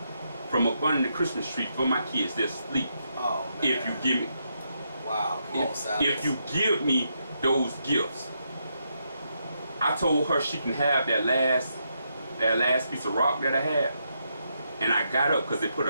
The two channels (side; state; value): both; inverted; correlation -0.80